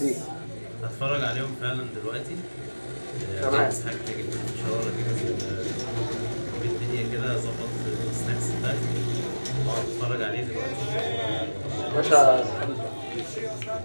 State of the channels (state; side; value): inverted; both; correlation -1.00